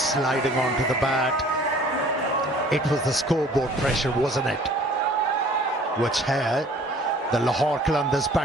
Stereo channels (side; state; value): both; normal; correlation 0.52